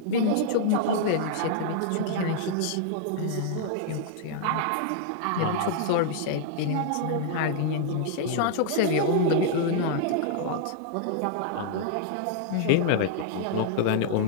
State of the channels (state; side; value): different; both; correlation -0.01